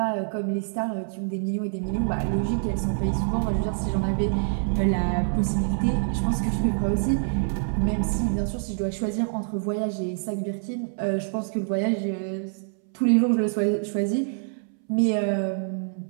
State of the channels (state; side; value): silent; left; 61 dB below the other